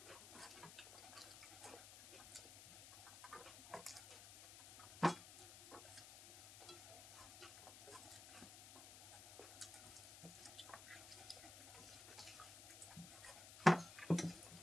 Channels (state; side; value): noise; left; hiss, 14 dB below the sound